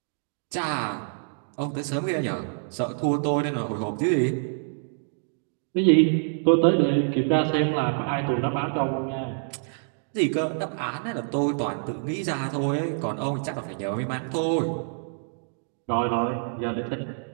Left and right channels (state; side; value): silent; left; digital silence